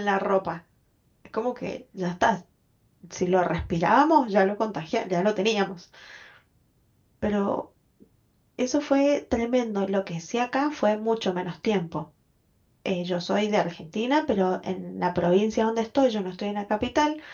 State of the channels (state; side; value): identical; both; correlation 1.00